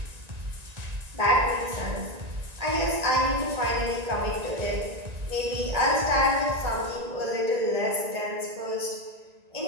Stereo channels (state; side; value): late; left; 1.9 ms